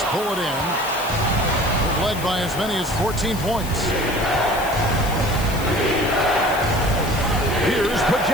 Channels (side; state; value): left; noise; hiss, 13 dB below the sound